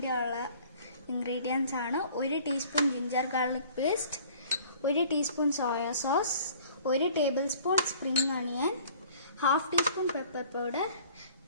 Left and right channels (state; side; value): inverted; both; correlation -0.51